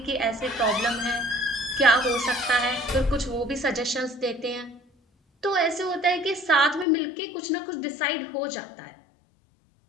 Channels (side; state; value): right; drops out; at 6.9 s